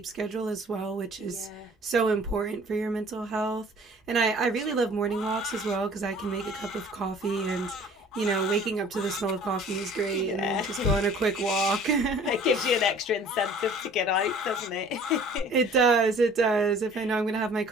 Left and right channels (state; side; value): normal; both; correlation 0.50